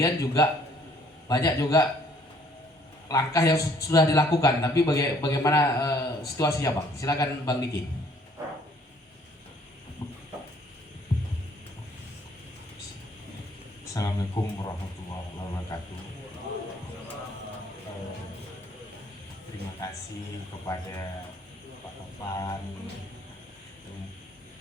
juga banyak juga langkah yang sudah dilakukan. Tapi bagaimana situasinya, Bang? Silakan Bang Diki. Assalamualaikum warahmatullahi wabarakatuh. Terima kasih kepada Pak Topan,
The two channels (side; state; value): both; normal; correlation 0.61